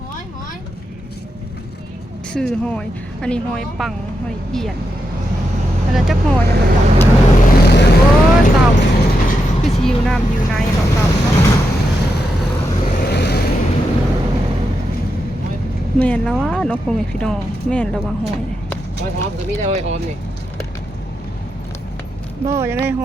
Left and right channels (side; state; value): both; normal; correlation 0.85